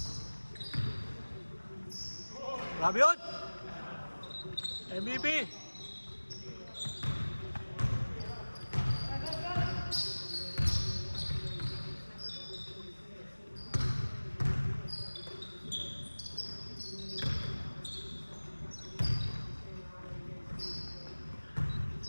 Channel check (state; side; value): inverted; both; correlation -1.00